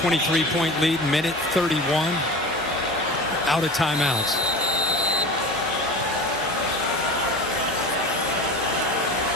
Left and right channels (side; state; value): both; normal; correlation 0.34